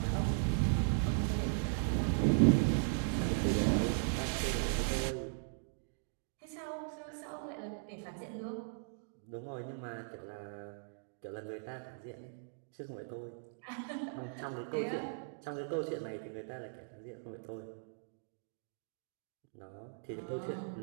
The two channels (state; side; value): silent; left; digital silence